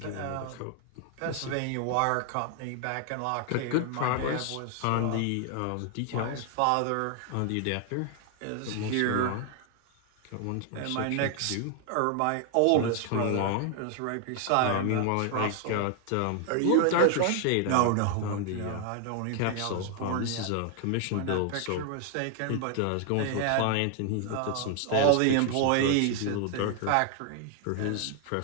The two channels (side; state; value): both; different; correlation 0.00